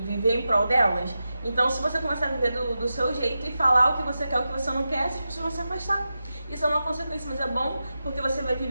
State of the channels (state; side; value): inverted; both; correlation -0.91